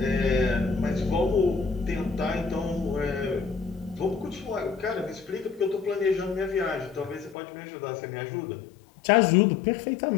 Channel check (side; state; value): right; drops out; at 7.4 s